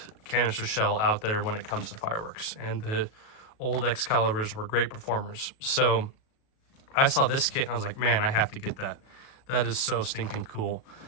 canister shell out there when it comes to fireworks, and the old Excaliburs were great performers. So I saw this kit and I was like, man, I have to get that. That is so stinking cool.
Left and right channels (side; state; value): right; late; 37 ms